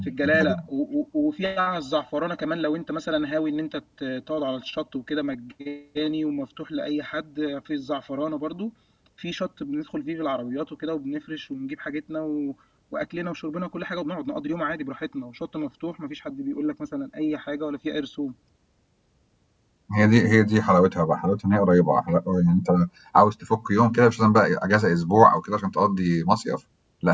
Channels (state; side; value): identical; both; correlation 1.00